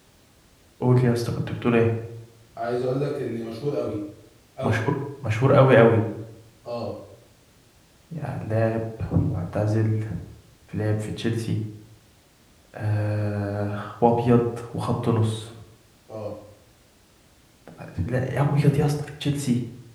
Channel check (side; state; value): both; identical; correlation 1.00